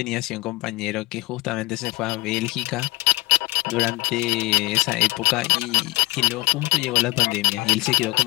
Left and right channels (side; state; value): right; quieter; 22.9 dB